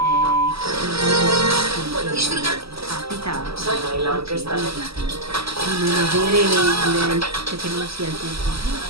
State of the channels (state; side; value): late; left; 0.77 ms